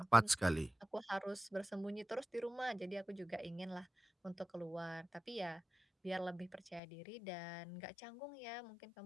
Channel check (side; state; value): right; drops out; at 6.8 s